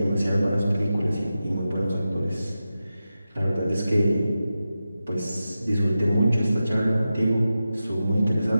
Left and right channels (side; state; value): both; inverted; correlation -0.92